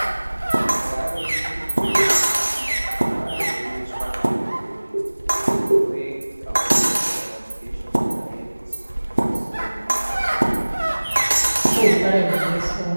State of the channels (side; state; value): both; inverted; correlation -1.00